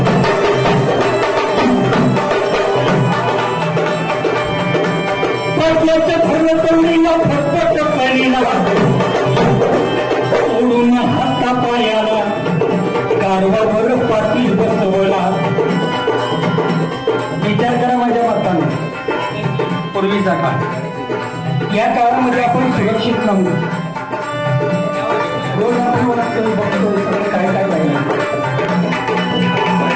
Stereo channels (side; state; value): both; identical; correlation 1.00